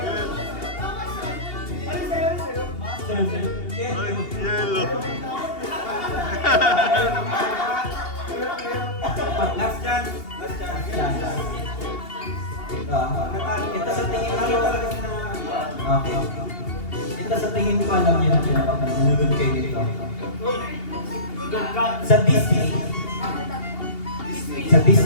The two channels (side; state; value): right; late; 2.8 ms